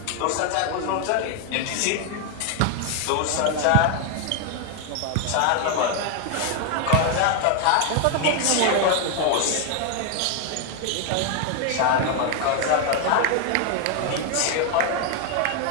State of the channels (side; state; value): both; different; correlation 0.00